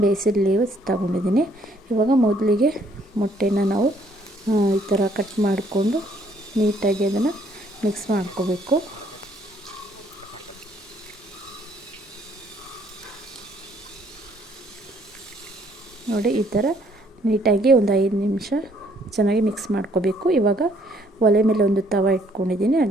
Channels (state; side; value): normal; both; correlation 0.65